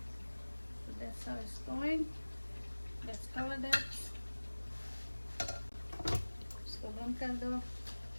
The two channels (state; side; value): inverted; both; correlation -1.00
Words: So that's how it's going. Let's cover that. इसको बंद कर दो.